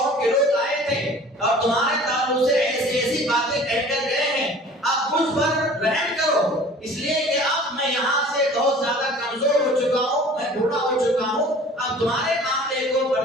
کے لوگ آئے تھے اور تمہارے تعلق سے ایسی ایسی باتیں کہہ کر گئے ہیں، اب مجھ پر رحم کرو، اس لیے کہ اب میں یہاں سے بہت زیادہ کمزور ہو چکا ہوں، میں بوڑھا ہو چکا ہوں، اب تمہارے معاملے کو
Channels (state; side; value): normal; both; correlation 0.46